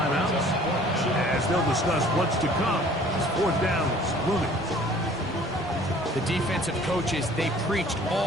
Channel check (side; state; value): both; normal; correlation 0.52